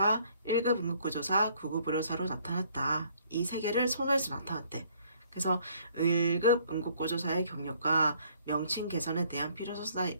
1급 응급구조사, 9급 의료사로 나타났다. 이 세 개를 손에서 나타났대. 그래서 1급 응급구조사의 경력과 명칭 개선에 대한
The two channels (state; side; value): inverted; both; correlation -0.62